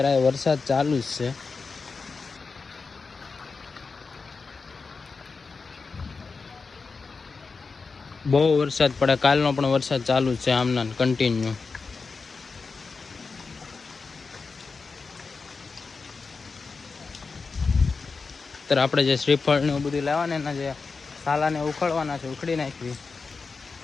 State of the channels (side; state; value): right; quieter; 4.6 dB